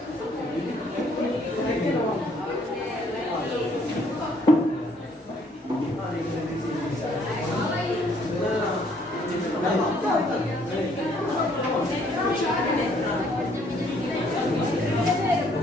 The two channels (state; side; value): normal; both; correlation 0.65